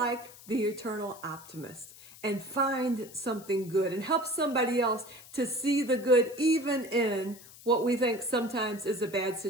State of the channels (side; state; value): left; noise; hiss, 19 dB below the sound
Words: the eternal optimist and find something good and help somebody else to see the good even in what we think sometimes is a bad